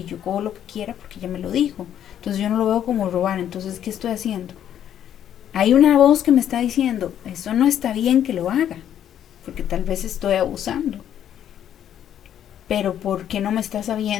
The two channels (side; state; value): right; quieter; 10.3 dB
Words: yo cojo lo que quiera porque ella me lo dijo, entonces yo no lo veo como robar, entonces ¿qué estoy haciendo? Hay una voz que me está diciendo, eso no está bien que lo haga, porque tal vez estoy abusando, pero ¿por qué no me está